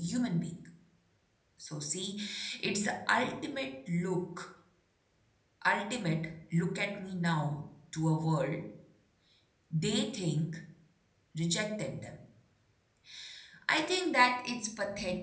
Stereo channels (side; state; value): both; identical; correlation 1.00